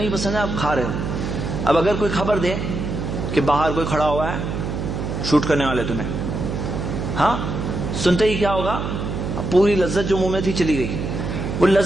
پسند ہے، آپ کھا رہے ہو. اب اگر کوئی خبر دے کہ باہر کوئی کھڑا ہوا ہے شوٹ کرنے والے تمہیں، ہاں سنتے ہی کیا ہوگا؟ پوری لذت جو منہ میں تھی چلی گئی. وہ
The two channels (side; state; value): right; noise; hum, 4 dB below the sound